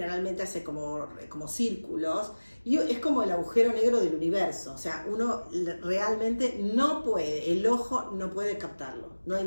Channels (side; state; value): both; inverted; correlation -1.00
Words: hace como círculos, y es como el agujero negro del universo, o sea, uno realmente no puede, el ojo no puede captarlo, no hay